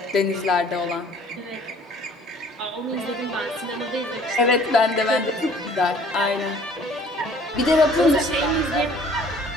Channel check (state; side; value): normal; both; correlation 0.54